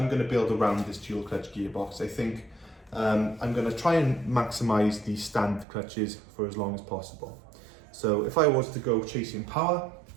going to build around this dual clutch gearbox. I think I'm going to try and maximize the standard clutches for as long as possible. So if I was to go chasing power,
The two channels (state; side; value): drops out; left; at 5.7 s